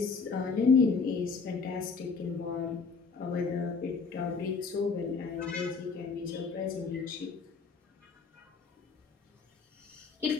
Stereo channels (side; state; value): right; quieter; 4.9 dB